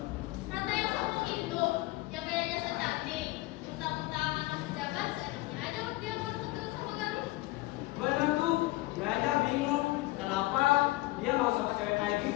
Ratna yang sombong itu, yang gayanya so cantik, mentang-mentang anak pejabat, seenaknya aja dia mau deket sama Galuh. Bener tuh, gue aja bingung kenapa dia mau sama cewek kayak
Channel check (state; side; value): quieter; right; 20.0 dB